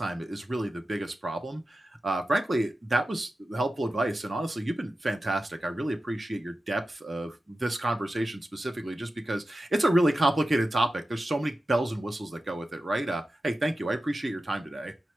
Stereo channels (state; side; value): normal; both; correlation 0.93